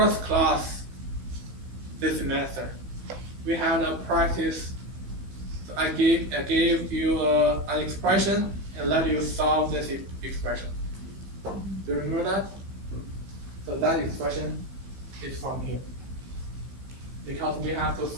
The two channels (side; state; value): left; late; 15 ms